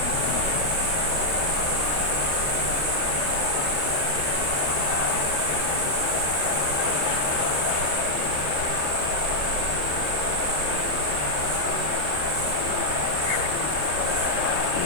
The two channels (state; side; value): late; left; 27 ms